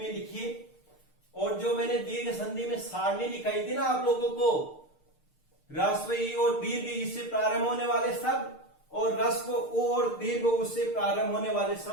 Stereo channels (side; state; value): right; late; 6.6 ms